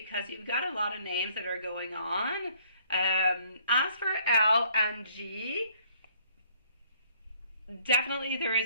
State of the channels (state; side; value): inverted; both; correlation -0.62